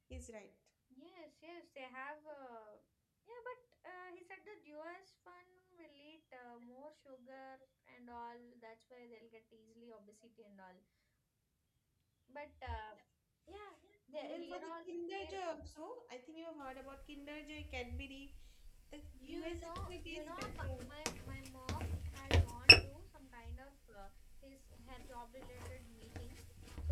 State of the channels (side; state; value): both; identical; correlation 1.00